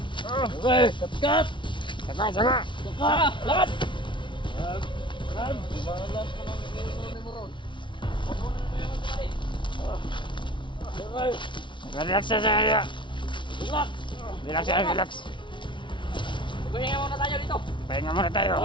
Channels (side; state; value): right; late; 0.24 ms